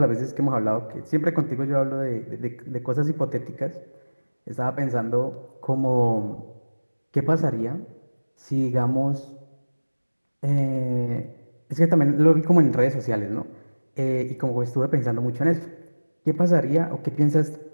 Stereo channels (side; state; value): both; inverted; correlation -1.00